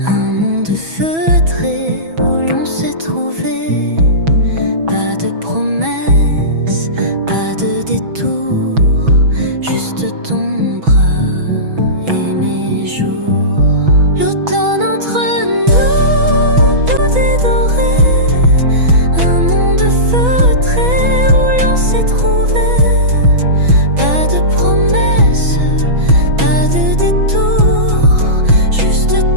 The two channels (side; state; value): left; late; 6.1 ms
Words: un monde feutré où l'on s'est trouvé. Pas de promesses, pas de détour, juste ton bras et mes jours. L'automne entre nous, doux et doré, un monde feutré où l'on s'est trouvé. Pas de promesses, pas de détour, juste